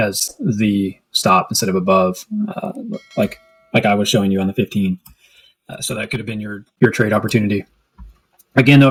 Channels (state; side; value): identical; both; correlation 1.00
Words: the stop instead of above, like I was showing you on the 15. So that could have been your trade opportunity. Again, though,